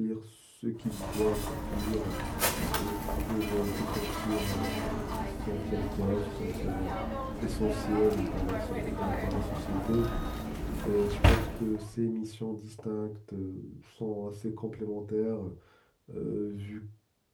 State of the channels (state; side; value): identical; both; correlation 1.00